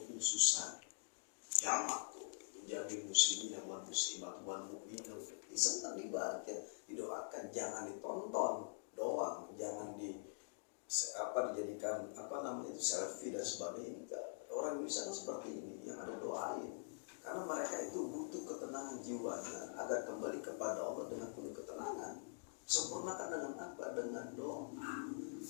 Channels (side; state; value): right; silent; digital silence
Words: khususan jamak tuh menjamin muslimin wal muslimat wal mu'minin senang dibaca, didoakan, jangan ditonton doang, jangan dijadikan itu selfie dan sebagainya. Enggak. Orang Indonesia kan seperti ini, yang ada doain, karena mereka itu butuh ketenangan jiwanya agar kembali kepada Allah dengan penuh ketenangan. Sempurnakan dengan apa? Dengan doa.